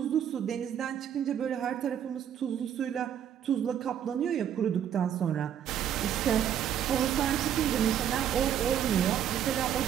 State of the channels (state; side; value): quieter; left; 9.5 dB